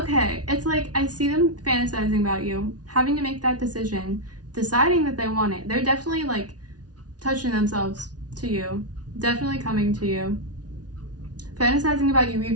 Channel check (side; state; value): left; late; 0.69 ms